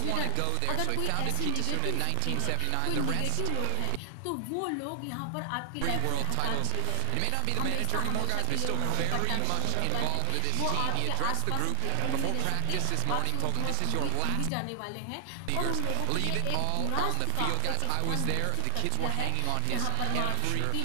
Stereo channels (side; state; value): both; different; correlation 0.00